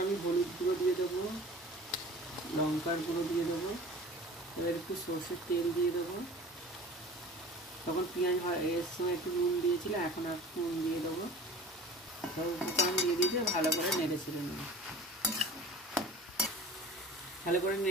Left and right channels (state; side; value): normal; both; correlation 0.41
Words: আমি হলুদ গুঁড়ো দিয়ে দেবো, লঙ্কার গুঁড়ো দিয়ে দেবো। এবার একটু সর্ষের তেল দিয়ে দেবো। তখন পেঁয়াজ এর সময় একটু নুন দিয়েছিলাম, এখন আর নুন দিয়ে দেবো। সব উপকরণ দিয়ে দিয়েছি, ভালো করে নেড়ে চেড়ে নেবো। ভালো করে